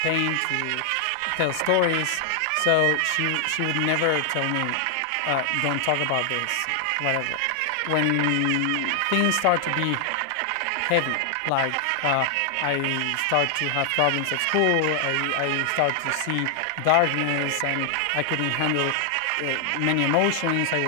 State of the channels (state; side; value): different; both; correlation 0.00